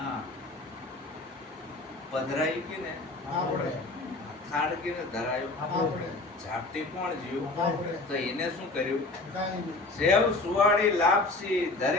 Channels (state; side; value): quieter; right; 3.2 dB